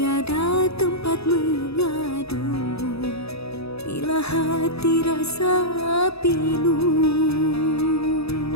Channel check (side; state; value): right; late; 0.78 ms